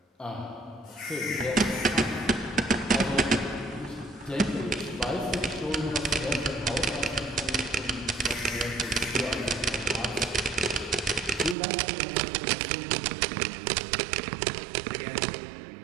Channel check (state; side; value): drops out; left; at 11.6 s